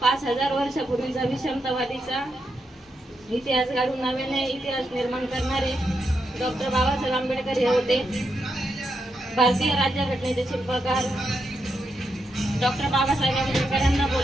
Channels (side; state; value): both; normal; correlation 0.83